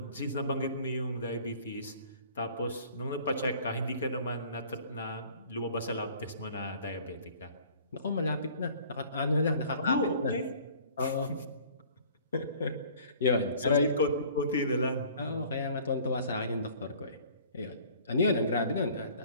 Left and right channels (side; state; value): both; inverted; correlation -0.51